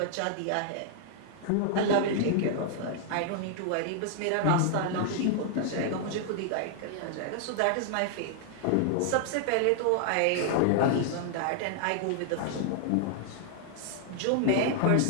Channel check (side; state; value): both; different; correlation -0.01